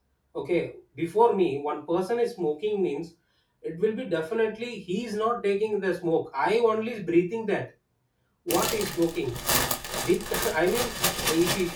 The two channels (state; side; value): identical; both; correlation 1.00